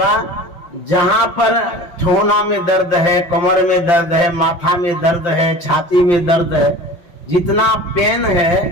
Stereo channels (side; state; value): right; late; 5.8 ms